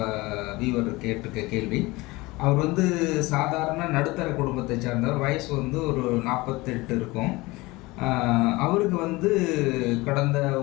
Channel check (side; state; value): right; quieter; 21.8 dB